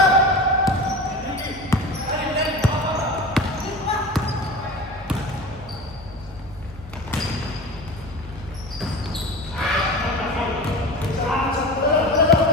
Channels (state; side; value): normal; both; correlation 0.31